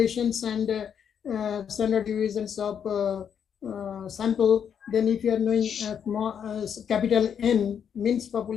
and standard deviations of sample, then if you are knowing capital N means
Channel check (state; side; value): quieter; right; 8.0 dB